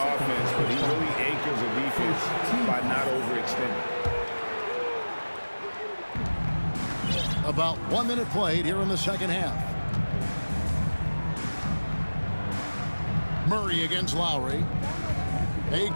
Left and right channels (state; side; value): inverted; both; correlation -1.00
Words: but he really anchors a defense by not overextending. About 1 minute played here in the second half. Murray against Lowry. Bay